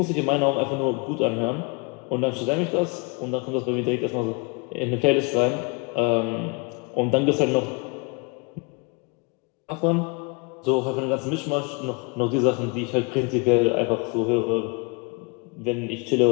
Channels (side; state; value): right; quieter; 29.8 dB